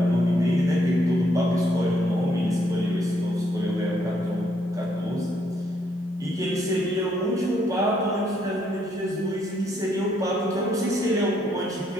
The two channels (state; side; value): normal; both; correlation 0.72